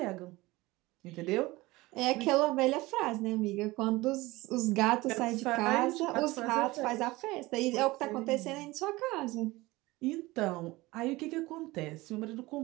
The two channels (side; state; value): left; quieter; 20.5 dB